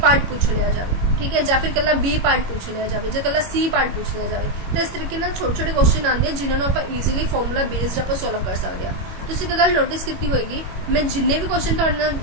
पार्ट पूछ लिया जाए। ठीक है। या फिर कला बी पार्ट पूछ लिया जाए, जो कला सी पार्ट पूछ लिया जाए। तो इस तरीके छोटे छोटे क्वेश्चन आते हैं जिन्होंने आप ईजिली फॉर्मूला बेस्ड आप सॉल्व कर सकते हैं। तुसीं एक गल नोटिस की होगी मैं जिन्ने भी क्वेश्चन तुहाडे नाल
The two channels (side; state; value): left; late; 21 ms